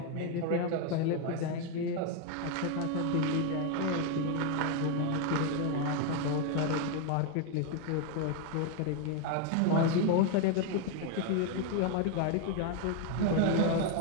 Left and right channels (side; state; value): both; different; correlation 0.01